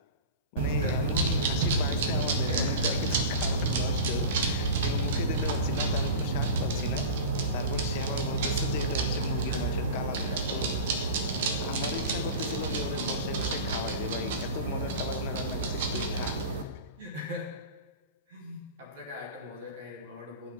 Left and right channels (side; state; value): both; inverted; correlation -0.31